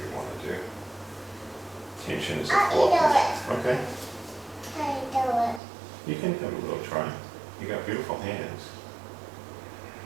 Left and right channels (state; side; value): drops out; left; at 5.6 s